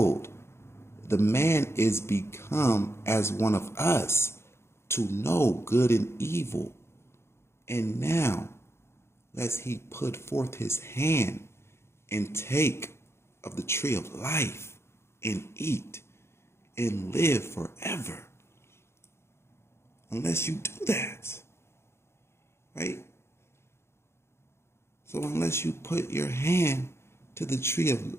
the man is become as one of us to know good and evil. And now, lest he put forth his hand and take of the tree of life and eat and live forever. Unless you do that. Right? So unless you put your hand to the tree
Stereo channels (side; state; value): right; late; 0.12 ms